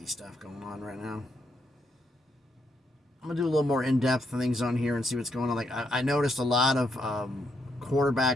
stuff going on right now. I'm gonna do a little more in-depth things on here and see what's going on. Like I noticed a lot of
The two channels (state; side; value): normal; both; correlation 0.78